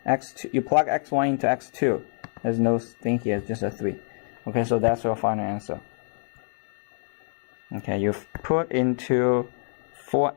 x2, you plug x1 into x2. There's no thing here, it's just a 3. Okay, so that's your final answer. Okay, you've put into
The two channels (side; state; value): right; silent; digital silence